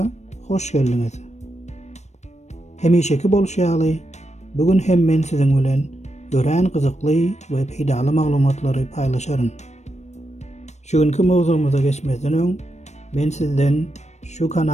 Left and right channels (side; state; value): right; late; 0.33 ms